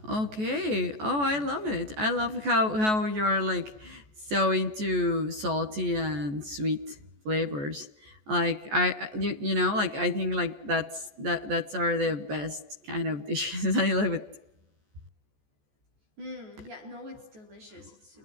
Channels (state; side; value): late; left; 14 ms